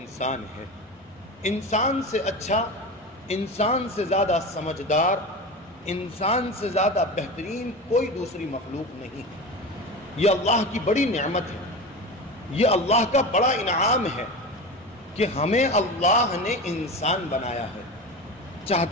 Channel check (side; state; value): both; normal; correlation 0.27